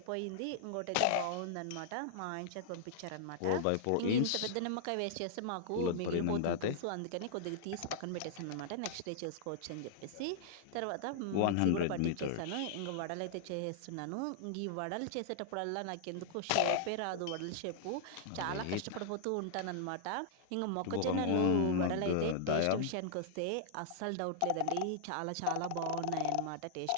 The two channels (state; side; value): different; both; correlation -0.01